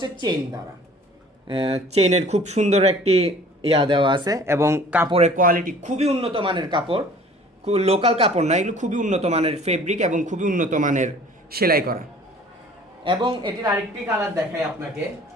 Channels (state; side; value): normal; both; correlation 0.50